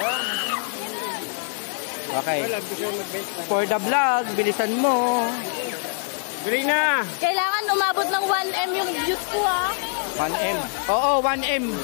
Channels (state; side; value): silent; right; digital silence